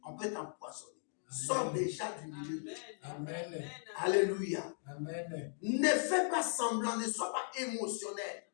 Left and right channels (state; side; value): silent; right; digital silence